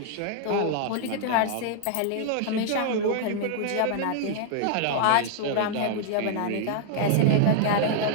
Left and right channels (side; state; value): both; different; correlation 0.00